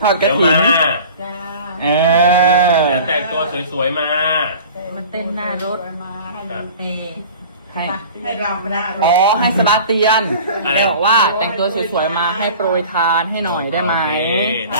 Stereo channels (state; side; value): inverted; both; correlation -0.42